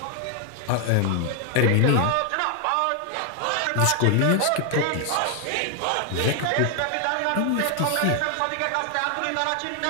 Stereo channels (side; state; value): both; different; correlation 0.00